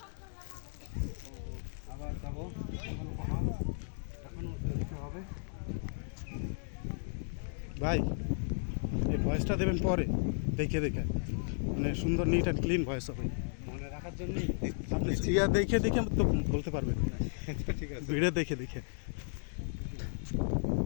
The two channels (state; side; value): silent; right; digital silence